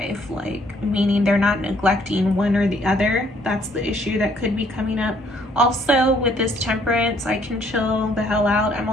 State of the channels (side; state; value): both; normal; correlation 0.65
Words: like meaning they're not neglecting one or the other, that's the issue that could be coming up. Also with this Temperance, I can chill the hell out. I'm